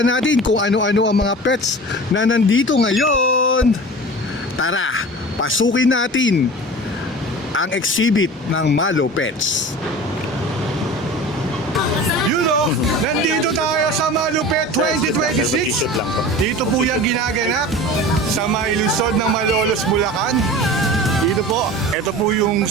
natin kung ano-ano ang mga pets na nandito ngayon. Tara, pasukin natin ang exhibit ng Malopets. Nandito tayo sa Malupet 2026. Dito po yung ginaganap sa may lungsod ng Malolos, Bulacan. Dito po, ito po yung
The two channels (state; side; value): normal; both; correlation 0.36